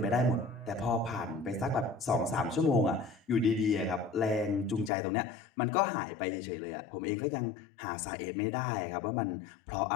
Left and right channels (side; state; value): right; drops out; at 4.9 s